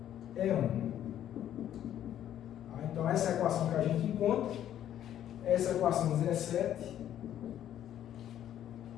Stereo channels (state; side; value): quieter; right; 11.0 dB